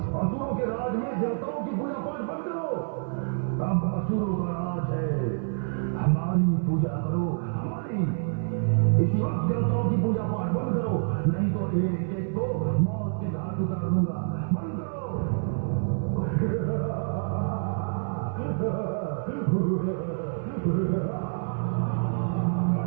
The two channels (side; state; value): left; silent; 60 dB below the other